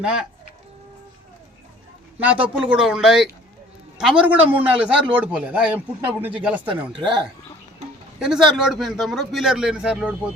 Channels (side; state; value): both; normal; correlation 0.51